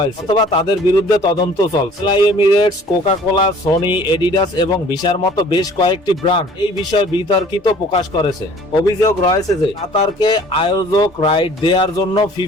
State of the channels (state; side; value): normal; both; correlation 0.52